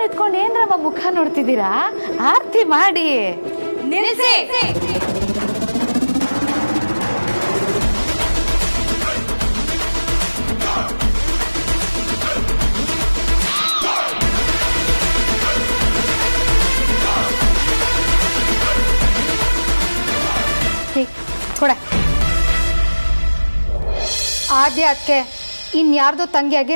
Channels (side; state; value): both; inverted; correlation -1.00